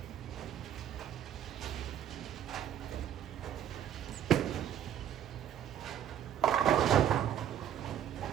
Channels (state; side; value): quieter; left; 10.0 dB